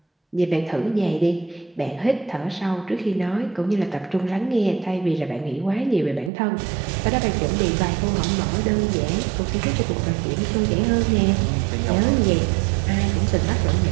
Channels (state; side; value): drops out; left; at 6.3 s